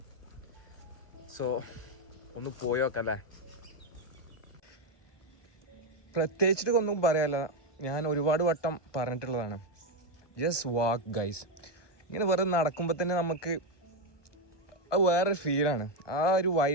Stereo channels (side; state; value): right; late; 1.2 ms